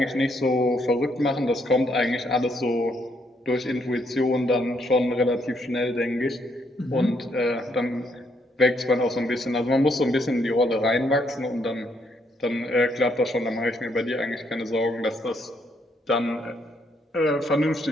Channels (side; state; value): both; normal; correlation 0.73